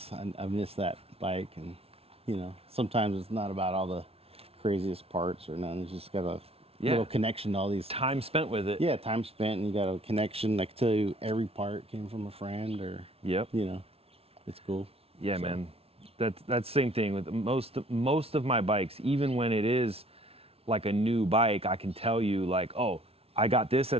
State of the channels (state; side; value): late; left; 0.29 ms